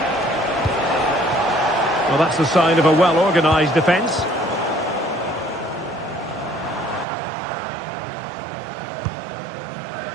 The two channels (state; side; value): drops out; left; at 7.1 s